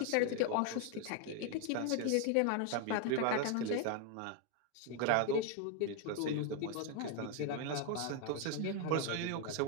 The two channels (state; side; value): different; both; correlation 0.01